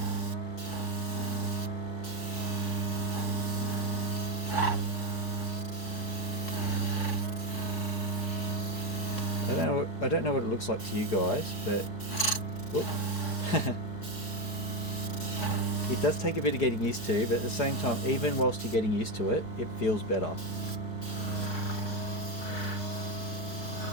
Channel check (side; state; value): right; late; 4.6 ms